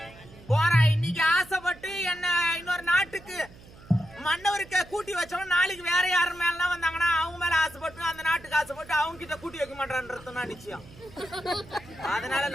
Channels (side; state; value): right; noise; hum, 21 dB below the sound